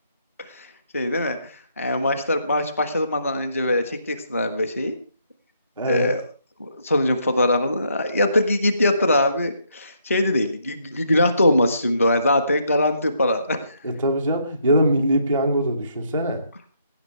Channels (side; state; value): both; inverted; correlation -0.72